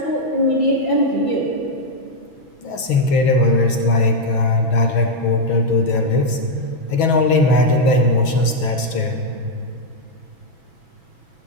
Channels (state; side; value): late; right; 6.1 ms